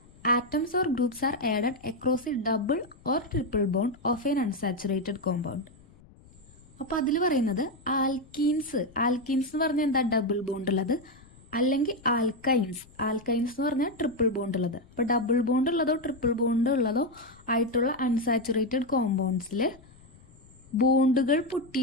atoms or groups are added across a double or triple bond of an unsaturated compound. അപ്പോൾ അതിൽ പറയുന്നത് ആൽക്കീൻസ് എന്ന് പറഞ്ഞാൽ എന്താ? ഡബിൾ ബോണ്ട് ഉള്ളത്. അല്ലെങ്കിൽ ആൽക്കൈൻസ് എന്ന് പറഞ്ഞാൽ ട്രിപ്പിൾ ബോണ്ട് ഉള്ളത്. അപ്പോൾ ഡബിൾ ബോണ്ട് ഉള്ളതോ ട്രിപ്പിൾ ബോണ്ട് ഉള്ളതോ ആയിട്ടുള്ള അൺസാച്ചുറേറ്റഡ് കോമ്പൗണ്ട്സിൽ ബോണ്ടുകൾ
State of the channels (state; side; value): noise; left; rumble, 25 dB below the sound